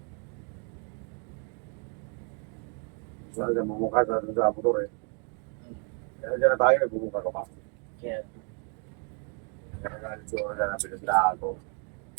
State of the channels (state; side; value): quieter; left; 39.6 dB